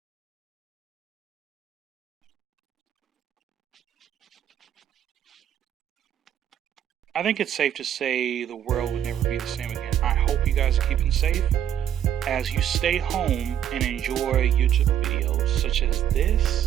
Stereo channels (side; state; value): left; quieter; 10.1 dB